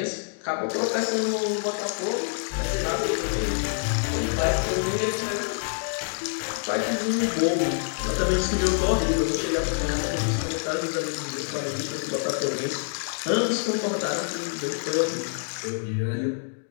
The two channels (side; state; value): right; silent; digital silence